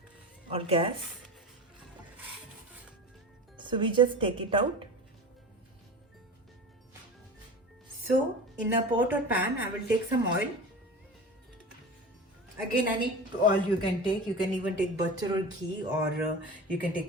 or gas. So we just take it out. So in a pot or pan, I will take some oil. Again, any oil you can take. You can even take butter or ghee, or you can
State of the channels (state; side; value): normal; both; correlation 0.32